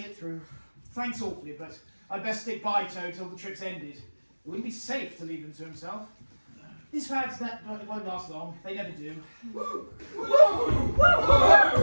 through. Thanks awfully, but I'd best stick by Toad till the trip's ended. It wouldn't be safe to leave him to himself. These fads that won't last long. They never do.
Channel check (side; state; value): both; inverted; correlation -1.00